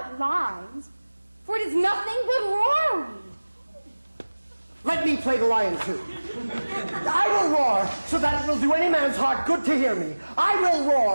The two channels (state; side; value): inverted; both; correlation -1.00